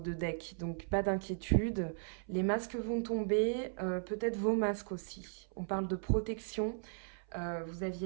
de deck, donc pas d'inquiétude. Les masques vont tomber, peut-être vos masques aussi. On parle de protection. Vous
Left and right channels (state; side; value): silent; left; 53 dB below the other